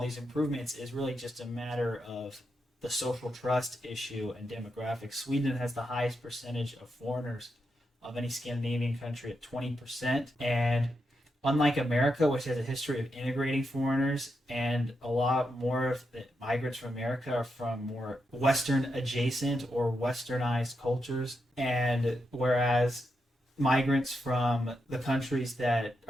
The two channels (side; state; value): both; normal; correlation 0.85